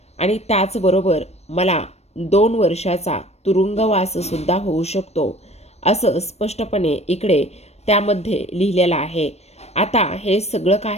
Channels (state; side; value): late; right; 0.31 ms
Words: आणि त्याचबरोबर मला 2 वर्षाचा तुरुंगवाससुद्धा होऊ शकतो, असं स्पष्टपणे इकडे त्यामध्ये लिहिलेलं आहे. आता हे सगळं